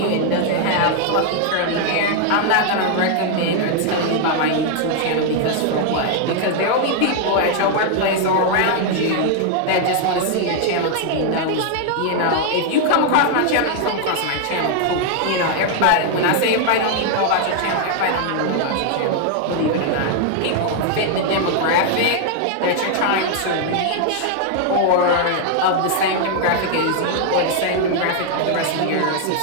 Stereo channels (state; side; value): different; both; correlation 0.00